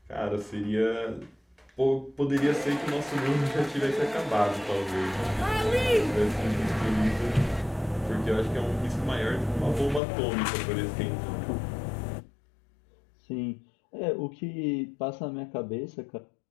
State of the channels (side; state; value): right; drops out; at 10.0 s